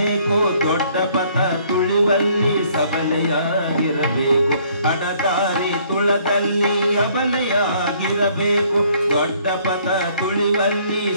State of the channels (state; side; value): inverted; both; correlation -0.62